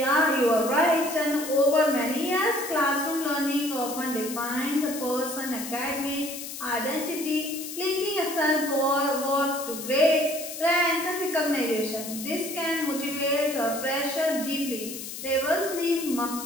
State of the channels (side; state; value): left; noise; hiss, 9 dB below the sound